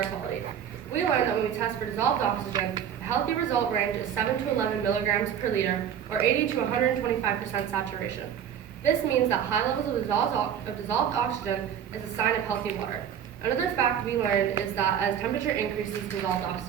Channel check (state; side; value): quieter; left; 9.0 dB